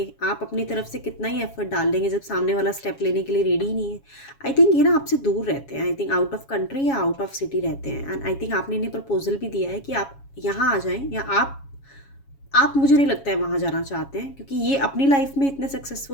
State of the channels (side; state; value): right; late; 7.2 ms